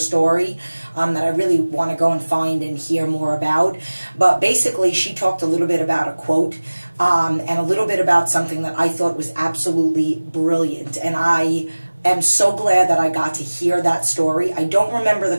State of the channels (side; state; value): both; inverted; correlation -1.00